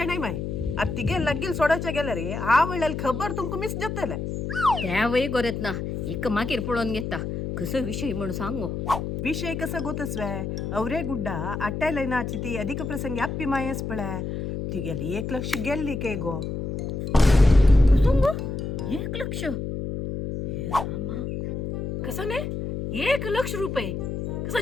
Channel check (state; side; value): noise; left; hum, 4 dB below the sound